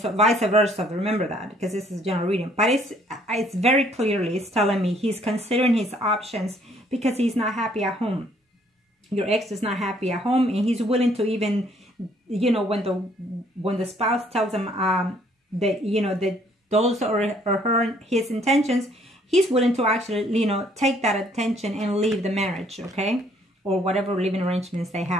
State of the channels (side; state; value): both; normal; correlation 0.64